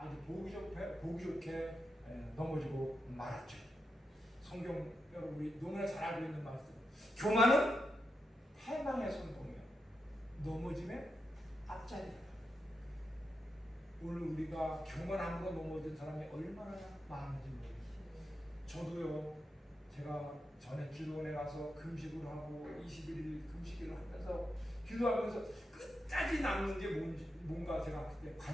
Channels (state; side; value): normal; both; correlation 0.87